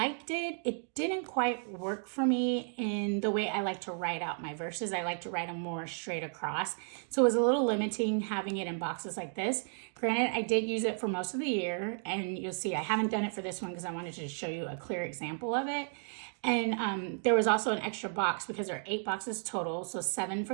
it, it didn't quite work for me in the way I like to write out my verses. I like to write them more straight across. So it was a little limiting having it in boxes like this. Granted, I did use it for most of the year, and you'll see I haven't done it for this one because I wanted to show you a clear example of it. And there was also an extra box because there are 8 boxes total, so 7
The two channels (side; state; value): left; silent; 56 dB below the other